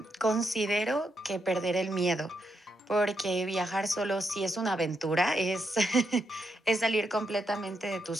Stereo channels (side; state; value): both; normal; correlation 0.81